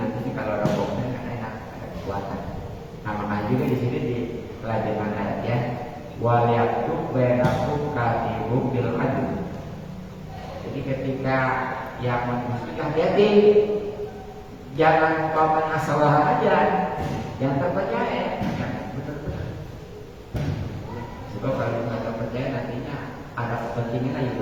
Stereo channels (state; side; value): identical; both; correlation 1.00